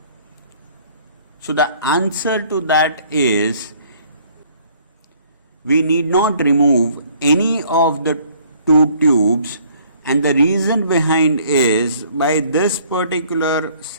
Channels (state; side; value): inverted; both; correlation -0.59